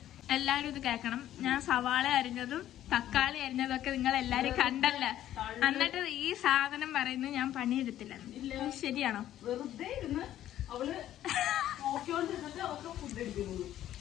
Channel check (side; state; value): right; quieter; 12.4 dB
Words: എല്ലാവരും ഇത് കേൾക്കണം. ഞാൻ സവാള അരിഞ്ഞതും തക്കാളി അരിഞ്ഞതും ഒക്കെ നിങ്ങൾ എല്ലാരും കണ്ടല്ല. എന്നിട്ട് ഈ സാധനം പറയുന്നത് ഞാൻ പണിയെടുത്തില്ല. ശരിയാണോ?